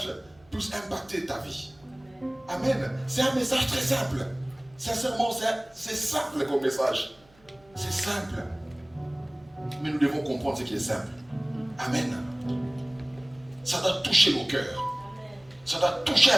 puisse impacter ta vie. Amen. C'est un message très simple. Sincèrement, c'est simple comme message. C'est simple. Mais nous devons comprendre ce qui est simple. Amen. Ça doit toucher nos cœurs. Ça doit toucher,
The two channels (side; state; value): right; noise; hum, 30 dB below the sound